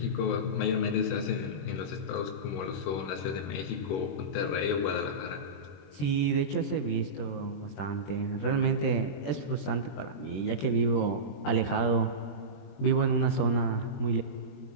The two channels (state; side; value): late; right; 21 ms